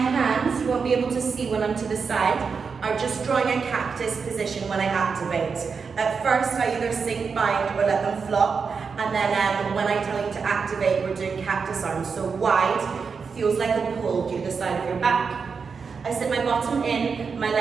you won't be able to see when I'm to the side, are just drawing a cactus position when I activate. At first, I either sink, bind, or let them flop, and then when I tell you to activate, we're doing cactus arms. So wide, feels like a pull through the side of your back. I sit my bottom in, my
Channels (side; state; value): left; quieter; 5.5 dB